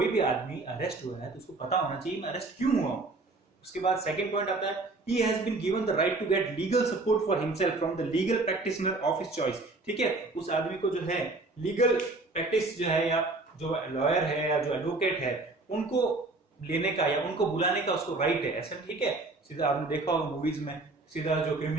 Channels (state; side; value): quieter; left; 3.2 dB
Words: भी आदमी अरेस्ट हुआ है तो उसको पता होना चाहिए मैं अरेस्ट क्यों हुआ हूं। उसके बाद सेकंड पॉइंट आता है, he has been given the right to get legal support for himself from the legal practitioner of his choice। ठीक है, उस आदमी को जो है लीगल प्रैक्टिस जो है, या जो लॉयर है या जो एडवोकेट है, उनको लेने का या उनको बुलाने का उसको राइट है। ऐसा ठीक है, सीधा आपने देखा होगा मूवीज में, सीधा जो